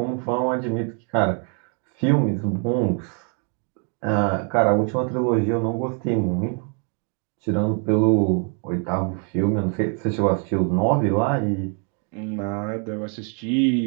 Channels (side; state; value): left; quieter; 39.7 dB